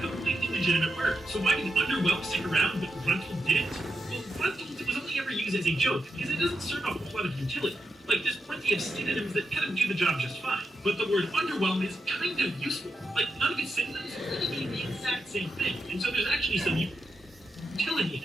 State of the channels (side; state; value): both; normal; correlation 0.86